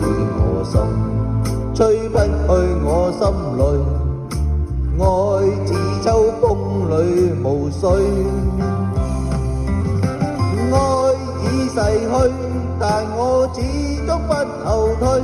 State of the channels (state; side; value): identical; both; correlation 1.00